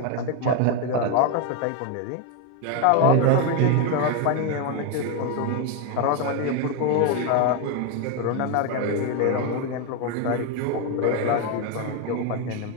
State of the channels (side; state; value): both; different; correlation 0.02